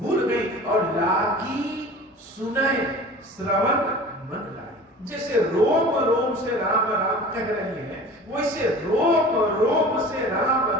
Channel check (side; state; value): both; normal; correlation 0.40